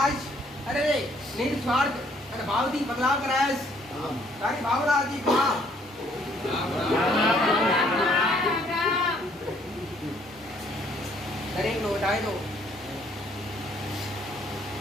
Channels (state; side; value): normal; both; correlation 0.64